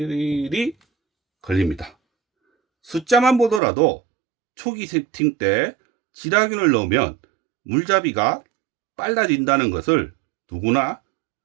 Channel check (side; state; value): left; drops out; at 3.6 s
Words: 걸립니다. 숫자만 보더라도 초기 세팅 때 질화균을 넣으면 물잡이가 빨라진다는 것을 누구나